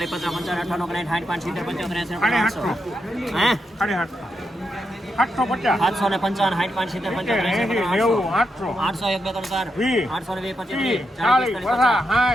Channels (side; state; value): both; normal; correlation 0.84